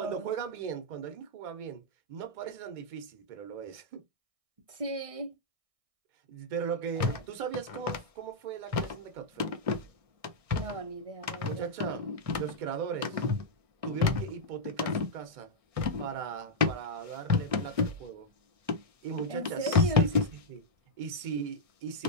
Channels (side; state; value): left; late; 1.6 ms